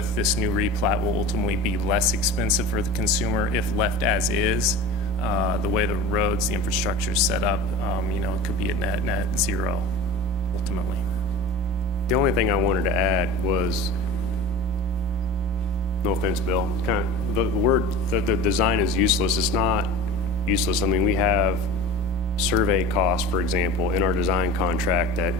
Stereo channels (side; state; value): both; normal; correlation 0.35